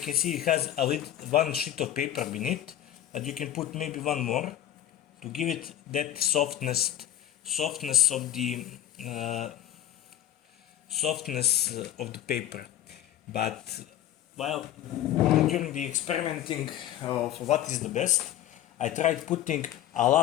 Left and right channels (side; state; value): right; quieter; 12.2 dB